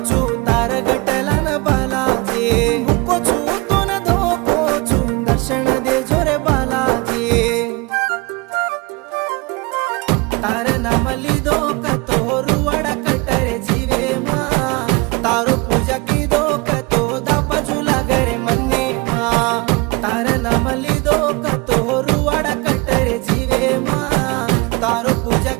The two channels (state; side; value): quieter; left; 26.0 dB